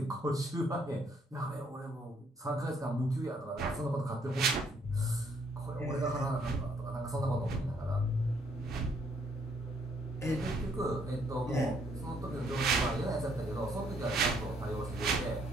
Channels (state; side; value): normal; both; correlation 0.68